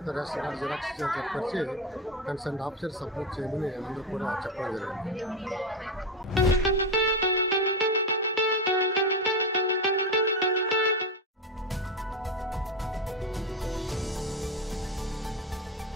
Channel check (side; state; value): both; normal; correlation 0.14